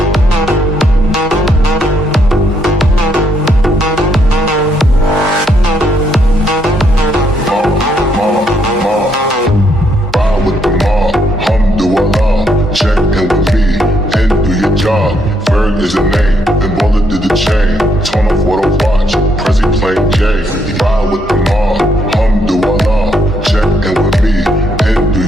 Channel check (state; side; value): normal; both; correlation 0.74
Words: Is a name, then Baller did the chain. Torn off what I watch, Prezi playing J. Ride with the mob, Alhamdulillah. Check in with me, and do